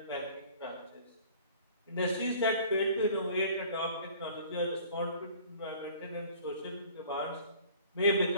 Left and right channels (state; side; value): inverted; both; correlation -0.49